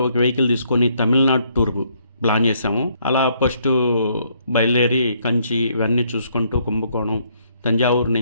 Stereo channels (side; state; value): both; inverted; correlation -0.70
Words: ఒక వెహికల్ తీసుకొని తమిళనాడు టూర్ ప్లాన్ చేసాము. అలా ఫస్ట్ బయలుదేరి కంచి ఇవన్నీ చూసుకుంటూ కుంభకోణం, తంజావూరు